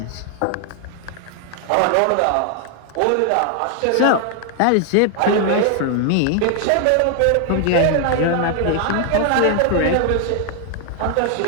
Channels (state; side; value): different; both; correlation 0.00